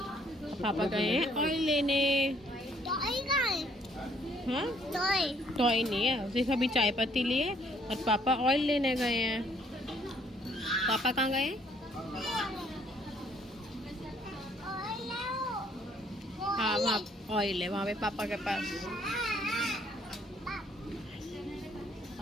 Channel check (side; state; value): both; normal; correlation 0.64